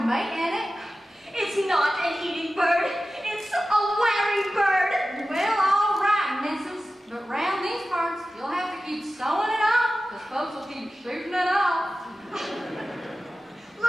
mate in it. It's not an eating bird. It's a wearing bird. Well, all right, missus. But round these parts, you'll have to keep sewing it off, because folks will keep shooting it off.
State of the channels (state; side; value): normal; both; correlation 0.95